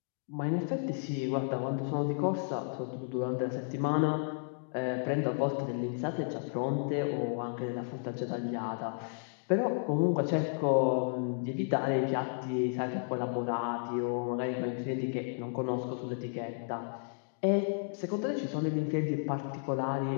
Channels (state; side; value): silent; right; digital silence